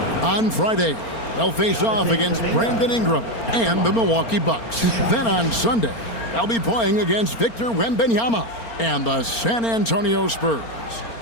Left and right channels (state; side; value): late; right; 4.4 ms